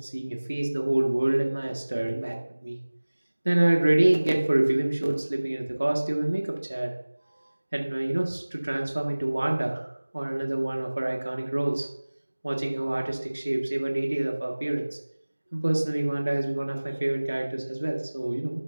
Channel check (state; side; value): inverted; both; correlation -1.00